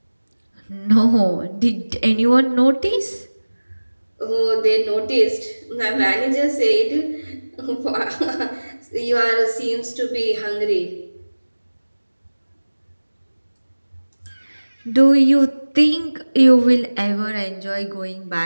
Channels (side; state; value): both; inverted; correlation -1.00